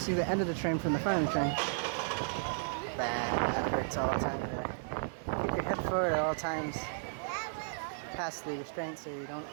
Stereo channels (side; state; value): left; silent; digital silence